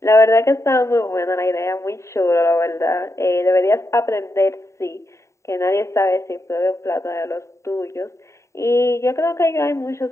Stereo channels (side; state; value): right; late; 0.14 ms